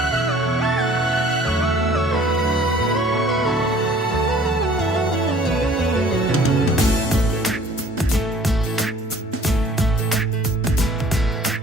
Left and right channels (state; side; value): normal; both; correlation 0.53